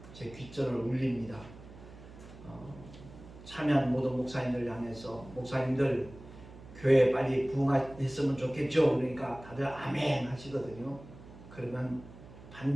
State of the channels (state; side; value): noise; right; hum, 18 dB below the sound